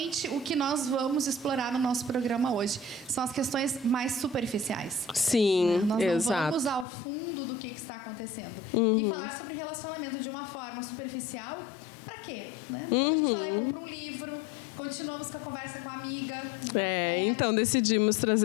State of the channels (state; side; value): drops out; right; at 6.9 s